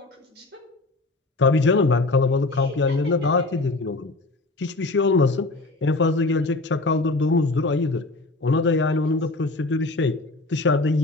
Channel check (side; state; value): right; quieter; 3.1 dB